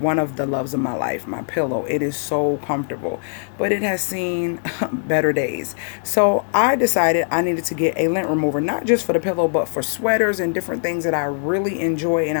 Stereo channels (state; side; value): silent; right; digital silence